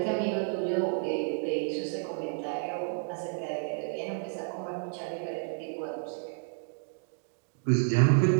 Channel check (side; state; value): left; silent; 57 dB below the other